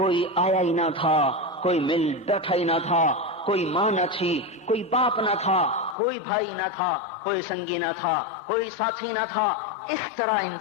آیا ہی نہ تھا، کوئی مل بیٹھا ہی نہ تھا، کوئی ماں نہ تھی، کوئی باپ نہ تھا، کوئی بھائی نہ تھا، کوئی سنگی نہ تھا، کوئی ساتھی نہ تھا۔ اس طرح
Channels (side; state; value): right; drops out; at 6.0 s